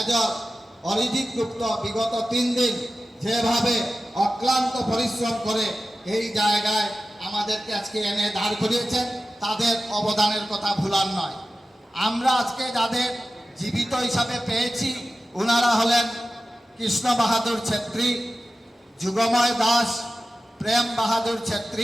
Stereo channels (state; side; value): normal; both; correlation 0.94